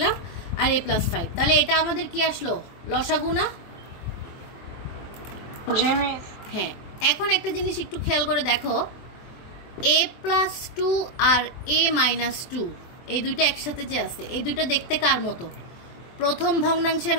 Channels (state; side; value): late; right; 24 ms